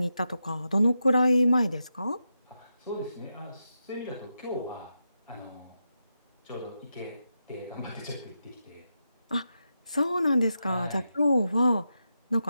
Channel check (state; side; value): inverted; both; correlation -0.87